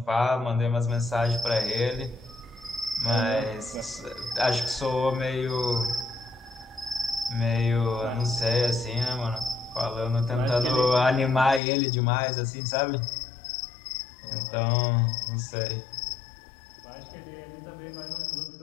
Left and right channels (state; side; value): drops out; right; at 11.6 s